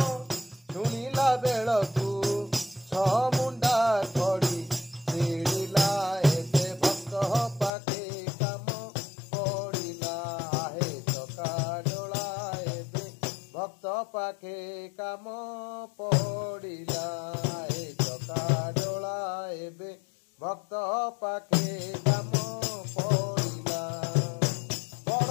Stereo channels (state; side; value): drops out; right; at 7.7 s